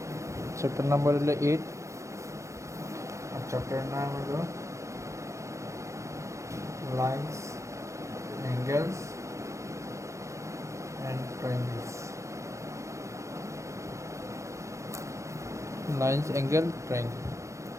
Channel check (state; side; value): late; left; 0.15 ms